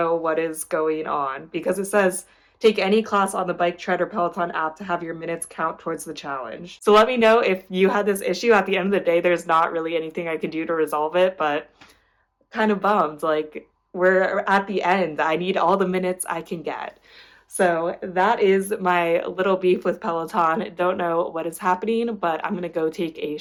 what is going on because it says take any class on the Bike Tread or Peloton app to have your minutes count towards the challenge. So let me know if you had this issue. At the end of the day, there's not really anything I can do to resolve it, but kind of bummed. Like, we're at the end. I need all the minutes I can get. So that is my little beef with Peloton. Don't know what is happening, but I'm gonna go take a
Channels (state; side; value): identical; both; correlation 1.00